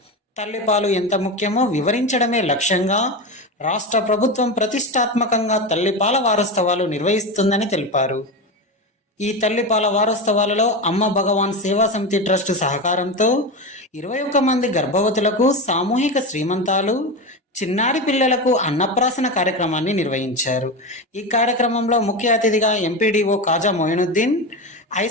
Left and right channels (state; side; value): normal; both; correlation 0.20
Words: తల్లిపాలు ఎంత ముఖ్యమో వివరించడమే లక్ష్యంగా రాష్ట్ర ప్రభుత్వం ప్రతిష్టాత్మకంగా తల్లిపాల వారోత్సవాలు నిర్వహిస్తుందని తెలిపారు. ఈ తల్లిపాల వారోత్సవాలలో అమ్మ భగవాన్ సేవా సమితి ట్రస్ట్ సహకారంతో 21 మంది గర్భవతులకు సామూహిక శ్రీమంతాలు, చిన్నారి పిల్లలకు అన్నప్రాసన కార్యక్రమాన్ని నిర్వహించారు. ఈ కార్యక్రమంలో ముఖ్య అతిథిగా ఎంపీడీఓ కాజా మొయినుద్దీన్,